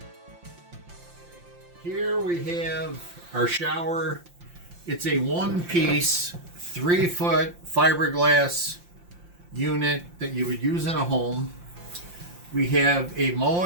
Here we have our shower. It's a one-piece 3-foot fiberglass unit that you would use in a home. We have a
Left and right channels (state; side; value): late; left; 5.7 ms